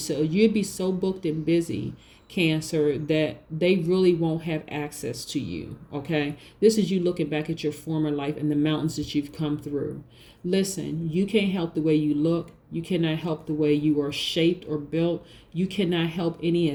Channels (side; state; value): both; identical; correlation 1.00